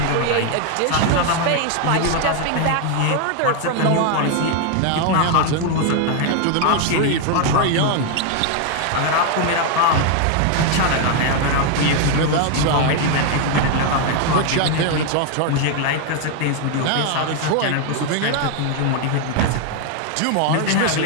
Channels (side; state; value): both; different; correlation 0.01